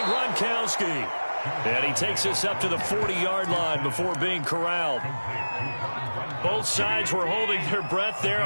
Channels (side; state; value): both; inverted; correlation -1.00